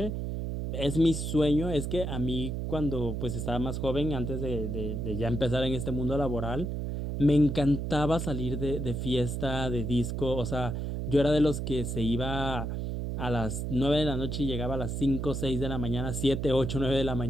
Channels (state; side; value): noise; right; hum, 3 dB below the sound